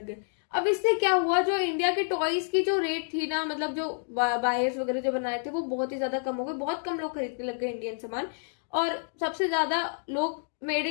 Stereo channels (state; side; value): silent; right; digital silence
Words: गए। अब इससे क्या हुआ, जो इंडिया के टॉयज की जो रेट थी ना, मतलब जो बायर्स वगैरह जो बनाए थे वो बहुत ही ज्यादा कम हो गए, बहुत कम लोग खरीदने लग गए इंडियन सामान, और सबसे ज्यादा लोग मेड